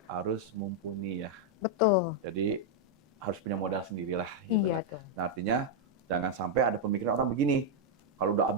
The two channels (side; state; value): both; normal; correlation -0.01